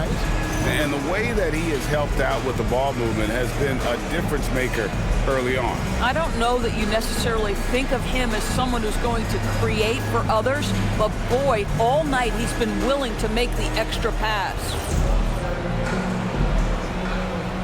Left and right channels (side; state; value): both; identical; correlation 1.00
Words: And the way that he has helped out with the ball movement has been a difference maker early on. I don't know that you necessarily think of him as someone who's going to create for others, but boy, all night he's been willing to make the extra pass.